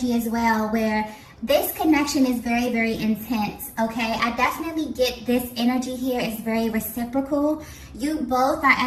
as well, where this connection is very intense. Okay, I definitely get this energy here is very reciprocal. You both are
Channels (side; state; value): both; identical; correlation 1.00